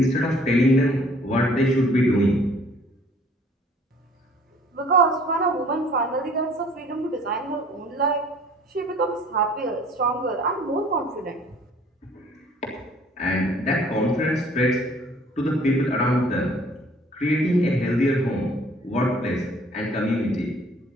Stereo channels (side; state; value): both; normal; correlation 0.55